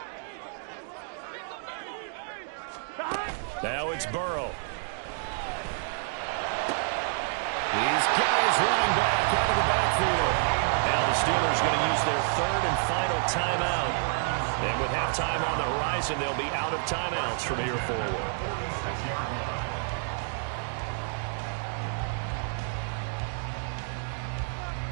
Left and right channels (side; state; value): left; silent; 59 dB below the other